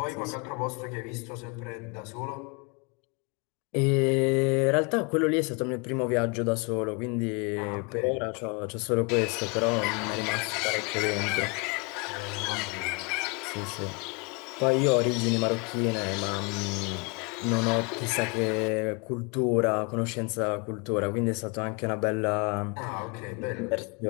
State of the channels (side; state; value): right; quieter; 31.9 dB